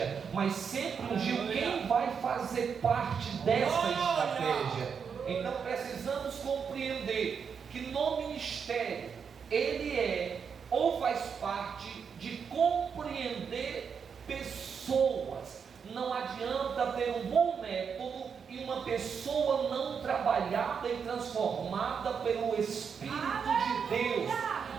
mas sempre ungiu quem vai fazer parte dessa estratégia. Então precisamos compreender que no ministério ele é ou faz parte de compreender pessoas. Não adianta ter um bom método e uma pessoa não trabalhada e transformada pelo Espírito de Deus.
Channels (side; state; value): left; quieter; 6.5 dB